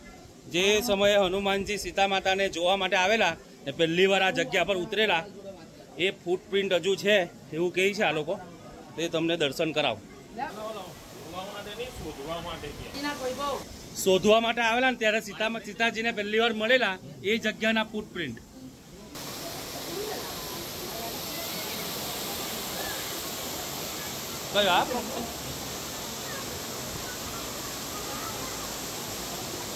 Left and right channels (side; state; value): both; identical; correlation 1.00